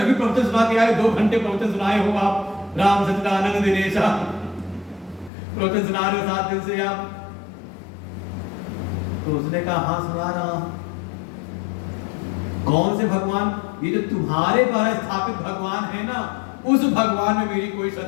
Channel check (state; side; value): drops out; right; at 5.3 s